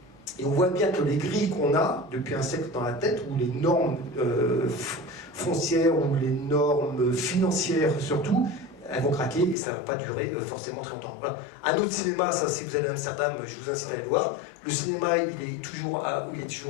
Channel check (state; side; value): drops out; right; at 9.6 s